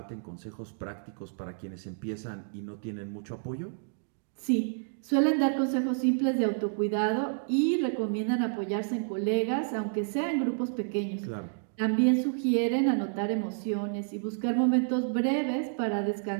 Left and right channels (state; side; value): silent; left; digital silence